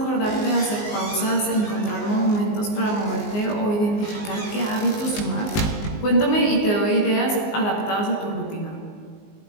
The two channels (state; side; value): late; right; 19 ms